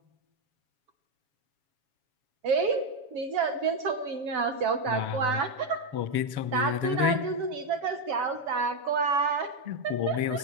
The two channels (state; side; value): late; left; 7.2 ms